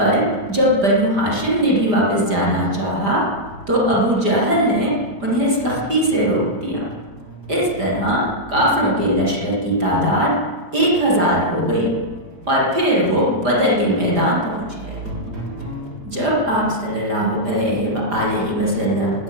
جب بنو ہاشم نے بھی واپس جانا چاہا تو ابو جہل نے انہیں سختی سے روک دیا۔ اس طرح کافروں کے لشکر کی تعداد 1000 ہو گئی اور پھر وہ بدر کے میدان پہنچ گئے۔ جب آپ صلی اللہ علیہ وآلہ وسلم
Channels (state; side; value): late; left; 5.0 ms